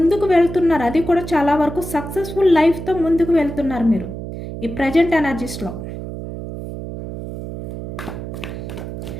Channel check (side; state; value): right; noise; hum, 8 dB below the sound